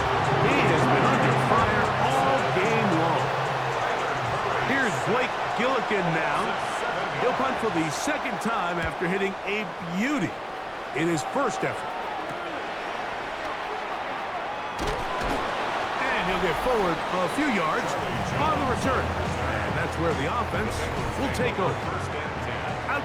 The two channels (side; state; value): both; identical; correlation 1.00